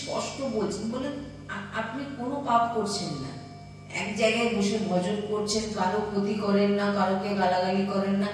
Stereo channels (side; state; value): both; identical; correlation 1.00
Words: বলছেন, বলেন আপনি কোনো পাপ করছেন না, এক জায়গায় বসে ভজন করছেন, কারো ক্ষতি করেন না, কারোকে গালাগালি করেন না,